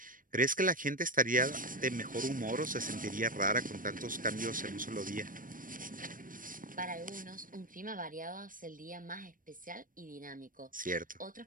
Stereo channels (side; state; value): left; late; 0.40 ms